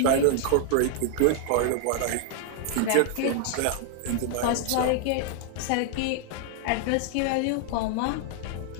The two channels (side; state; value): both; different; correlation 0.00